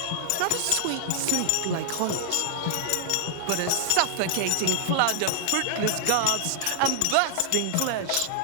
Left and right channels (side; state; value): both; different; correlation -0.01